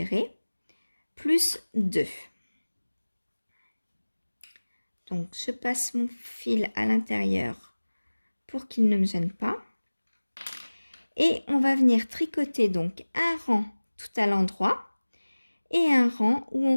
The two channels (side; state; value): both; inverted; correlation -1.00